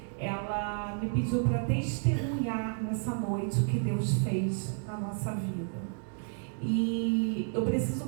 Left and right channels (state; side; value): silent; left; 57 dB below the other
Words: Ela me pediu para testemunhar nessa noite o que Deus fez na nossa vida. E eu preciso